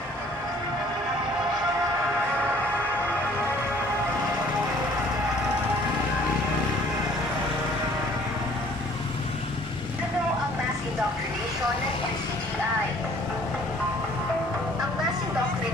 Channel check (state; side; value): normal; both; correlation 0.56